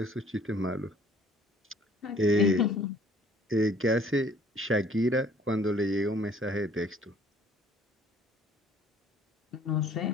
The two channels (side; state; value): both; normal; correlation 0.57